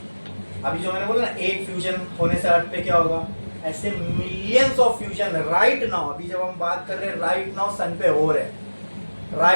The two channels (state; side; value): inverted; both; correlation -1.00